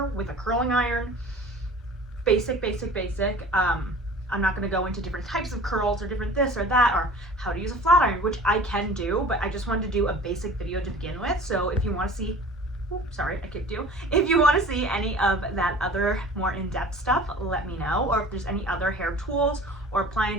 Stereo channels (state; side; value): normal; both; correlation 0.43